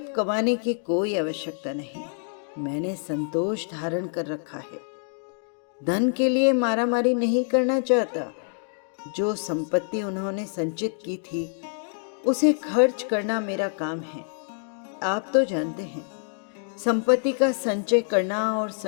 कमाने की कोई आवश्यकता नहीं। मैंने संतोष धारण कर रखा है। धन के लिए मारामारी नहीं करना चाहता। जो संपत्ति उन्होंने संचित की थी उसे खर्च करना मेरा काम है। आप तो जानते हैं, संपत्ति का संचय करना और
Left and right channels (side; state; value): right; silent; 61 dB below the other